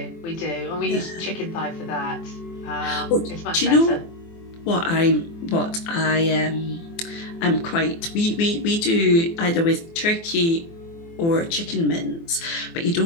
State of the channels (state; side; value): late; right; 24 ms